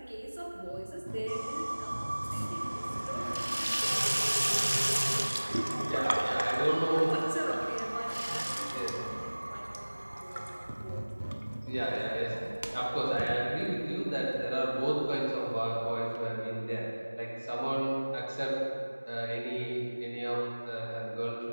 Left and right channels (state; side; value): inverted; both; correlation -1.00